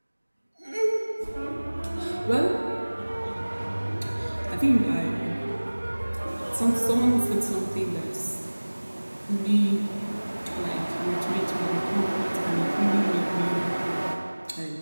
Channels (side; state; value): both; inverted; correlation -1.00